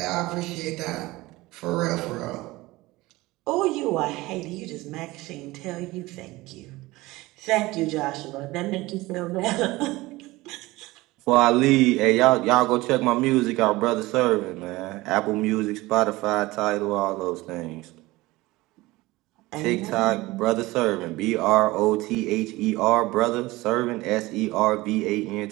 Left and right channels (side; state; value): left; quieter; 20.0 dB